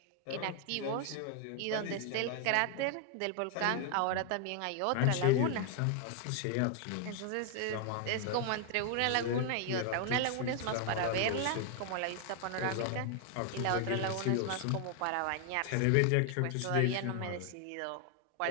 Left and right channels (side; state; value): both; different; correlation 0.00